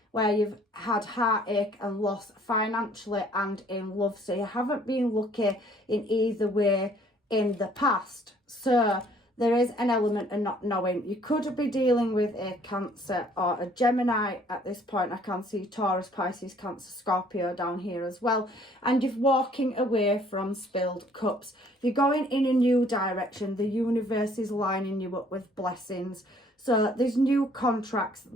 where you've had heartache and loss financially and in love. So you haven't been lucky in either way in the past. So there is an element of not knowing. You could be dealing with a Cancer or a Gemini at this point. I can see Taurus, Pisces, Cancer, Scorpio down here as well. And you're walking away from spilled cups. You're going in a new direction. The universe is lining you up with blessings. So there's new contracts.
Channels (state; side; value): normal; both; correlation 0.59